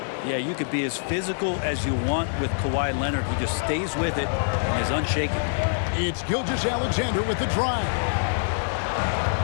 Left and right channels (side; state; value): right; silent; digital silence